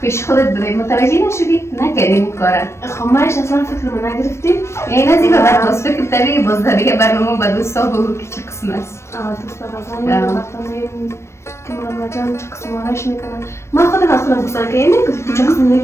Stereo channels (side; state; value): right; late; 0.13 ms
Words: پیش خودت بده متوجه نشدی نکردیم کارا خب مایش اصلا فکر من نگرفتیم این از این بعد باز فکر تری باز دیگه برنامه با دوستا بگو که چه قسم است دوستا بازم وقتا که مرمه جان چه قسم آرش میکنن من خودم گفتم که اینه که چه قسم